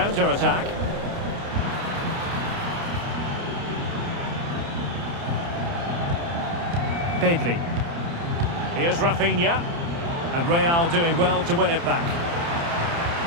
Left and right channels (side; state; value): left; late; 29 ms